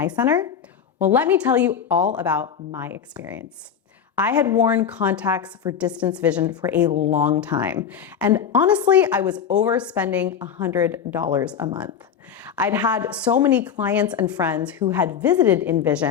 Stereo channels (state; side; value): quieter; right; 7.8 dB